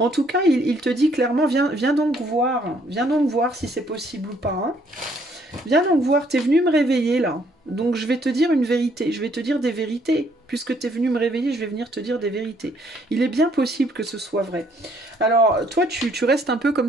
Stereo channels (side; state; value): both; normal; correlation 0.66